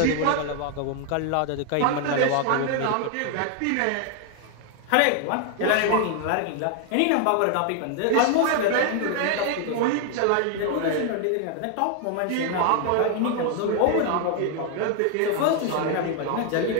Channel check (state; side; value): different; both; correlation 0.00